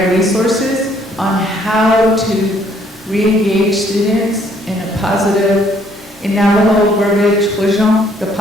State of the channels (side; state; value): both; normal; correlation 0.65